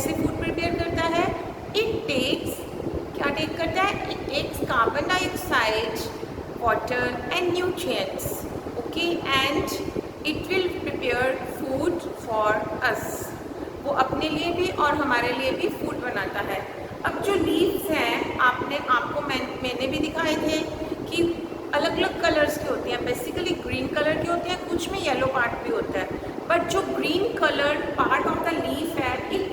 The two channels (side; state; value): both; identical; correlation 1.00